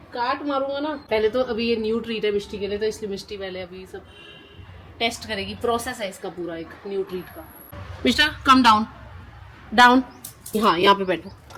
काट मारूंगा ना। पहले तो अभी ये न्यू ट्रीट है मिष्टी के लिए, तो इसलिए मिष्टी पहले अभी सब टेस्ट करेगी। प्रोसेस है इसका पूरा एक न्यू ट्रीट का। मिस्टर कम डाउन डाउन, हाँ यहाँ पे बैठो।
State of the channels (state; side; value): identical; both; correlation 1.00